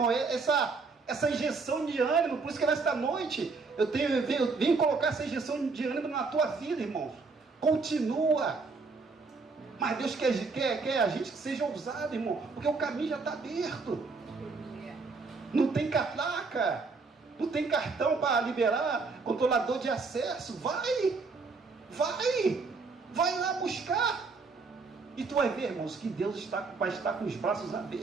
essa injeção de ânimo. Por isso que nesta noite eu venho colocar essa injeção de ânimo na tua vida, irmãos. Continua. Mas Deus quer a gente que seja ousado, irmão. Porque o caminho já está aberto. Não tem catraca. Não tem cartão para liberar controlador de acesso. Vai lá buscar. E tu vai ver, irmãos, que Deus vai estar com os braços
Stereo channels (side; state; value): left; quieter; 4.3 dB